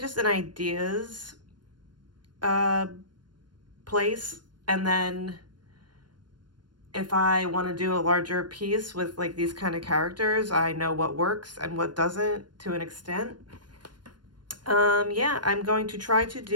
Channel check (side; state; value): left; late; 0.71 ms